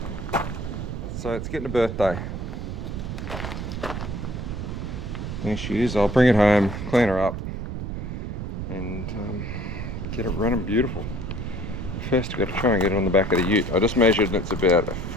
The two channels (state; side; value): noise; right; rumble, 5 dB below the sound